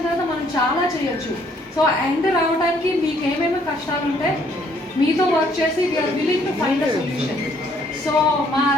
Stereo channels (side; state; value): both; normal; correlation 0.65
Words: తర్వాత మనం చాలా చేయొచ్చు. సో ఎండ్ రావడానికి మీకు ఏమేమి కష్టాలు ఉంటే మీతో వర్క్ చేసి we are willing to find a solution. So మా